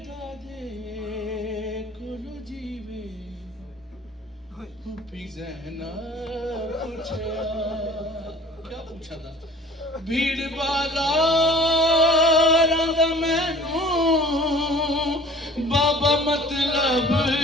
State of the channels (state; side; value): normal; both; correlation 0.48